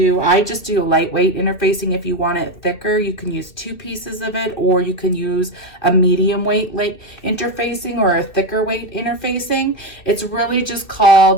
I just do lightweight interfacing. If you want it thicker, you can use 2 pieces of it, or you can use a medium weight interfacing or a thicker weight interfacing. It's really just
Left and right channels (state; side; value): late; right; 2.6 ms